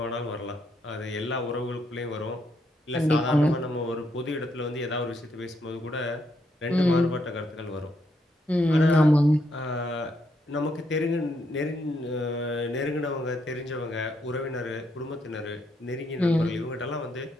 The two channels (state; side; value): normal; both; correlation 0.76